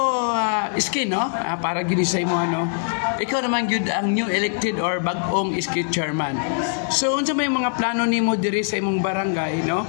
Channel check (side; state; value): right; silent; 64 dB below the other